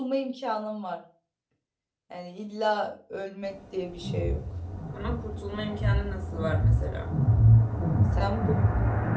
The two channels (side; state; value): both; identical; correlation 1.00